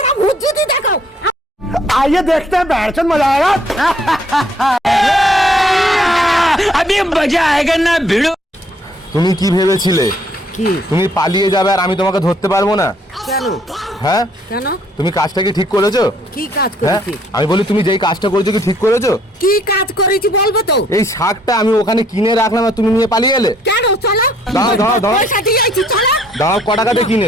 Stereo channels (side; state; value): both; normal; correlation 0.64